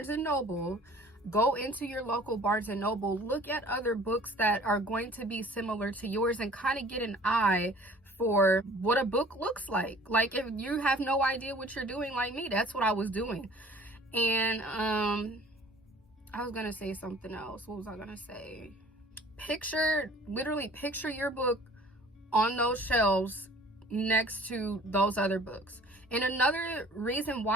and Noble, go into your local Barnes and Noble, look at other books that are going to be similar to yours, and kind of get an eye for what a book looks like. Like, if you have no idea what you're doing, like me, that's what I was doing. And I was gonna say something else. What was I gonna say? Literally picture your book on those shelves next to those other books. And another reason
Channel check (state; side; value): normal; both; correlation 0.50